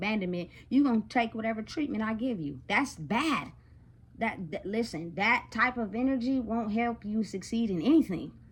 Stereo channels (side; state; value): both; identical; correlation 1.00